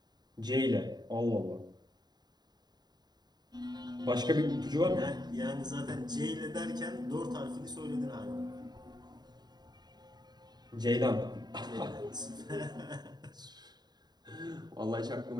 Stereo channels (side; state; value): left; late; 0.20 ms